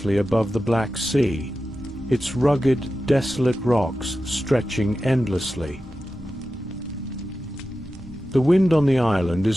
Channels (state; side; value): normal; both; correlation 0.93